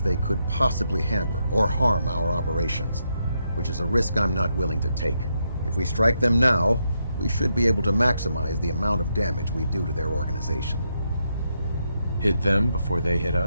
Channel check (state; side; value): inverted; both; correlation -0.81